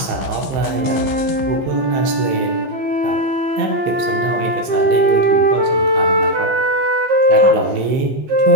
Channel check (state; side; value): late; left; 15 ms